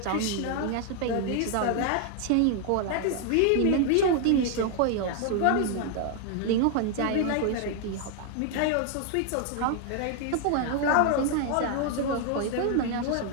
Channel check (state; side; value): different; both; correlation 0.00